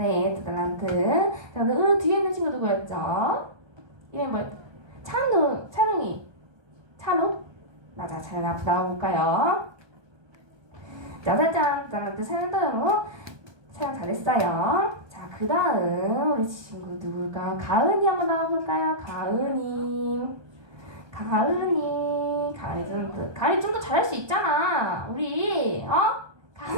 2달란트. 자 은우 뒤에 있는 친구 누구였죠? 이름이 뭐였죠? 찬우? 맞아, 잘 나와볼까요? 짜자잔, 달란트 사연도요. 사연 잘했어요. 자, 그 다음 우리 친구 누굴까? 가은이 한번 나와볼까요? 가은이 좀 더 잘할 수 있잖아. 우리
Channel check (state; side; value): late; left; 1.2 ms